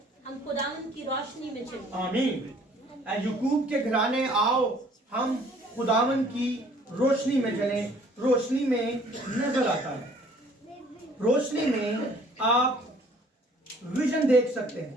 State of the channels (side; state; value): both; normal; correlation 0.56